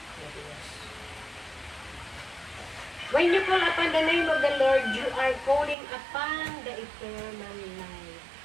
When you call upon the name of the Lord, you are calling upon the eternal life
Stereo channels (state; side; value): drops out; left; at 5.8 s